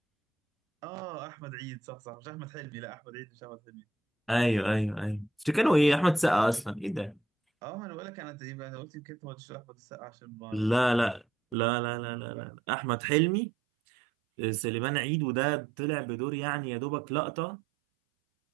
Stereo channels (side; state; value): left; drops out; at 11.6 s